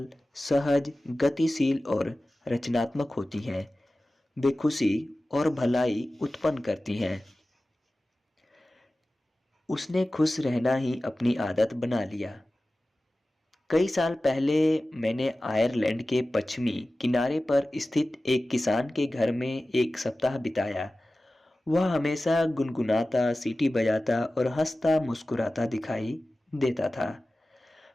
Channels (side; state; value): both; normal; correlation 0.96